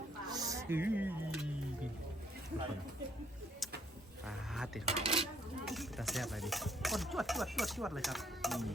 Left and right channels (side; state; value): both; normal; correlation 0.66